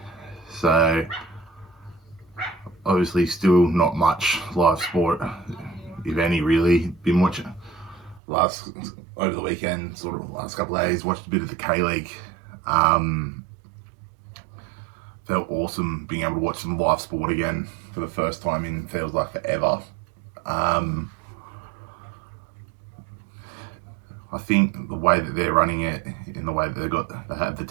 So, obviously still not much live sport, if any really. Been watching over the weekend, sort of last couple of days, watched a bit of the K-League. Felt awesome being able to watch some live sport again for the first time in feels like forever. I think the way that they're running it, in the way that they have the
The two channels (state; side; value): drops out; left; at 8.2 s